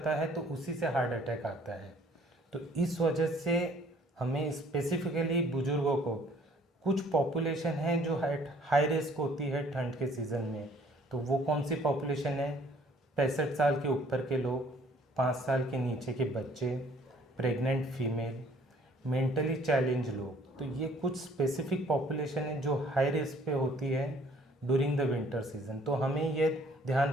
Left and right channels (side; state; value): both; normal; correlation 0.58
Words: है तो उसी से हार्ट अटैक आता है। तो इस वजह से हमें स्पेसिफिकली बुज़ुर्गों को, कुछ पॉपुलेशन है जो हाई रिस्क होती है ठंड के सीज़न में। तो वो कौन सी पॉपुलेशन है? 65 साल के ऊपर के लोग, 5 साल के नीचे के बच्चे, प्रेग्नेंट फीमेल, मेंटली चैलेंज लोग। तो ये कुछ स्पेसिफिक पॉपुलेशन है जो हाई रिस्क पे होती है ड्यूरिंग द विंटर सीज़न। तो हमें ये ध्यान